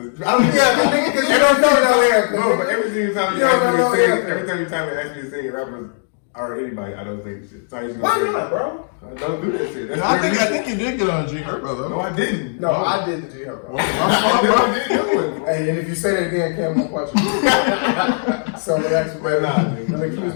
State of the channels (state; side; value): silent; right; digital silence